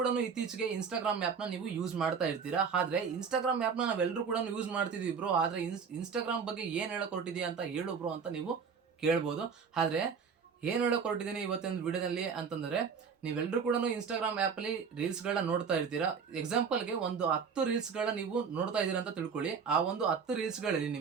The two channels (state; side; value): quieter; left; 6.1 dB